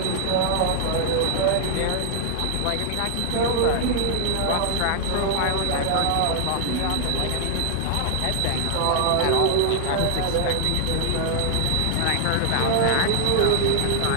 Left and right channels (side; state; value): both; different; correlation -0.01